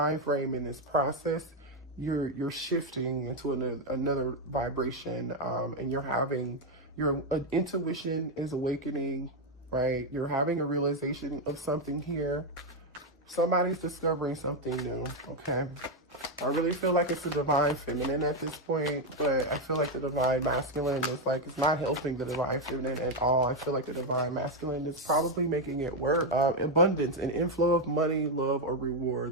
frame in this process, you're shifting into another vibration, and your intuition is awakening, right? You're having a realization of something here. Somebody's discovering something new, okay? I really feel like it's a divine feminine at this point, but I feel like the divine masculine is like, it's not helping the divine feminine at all. I feel like the divine masculine is probably making it work. Abundance, an inflow of money, love, or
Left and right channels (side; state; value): both; normal; correlation 0.04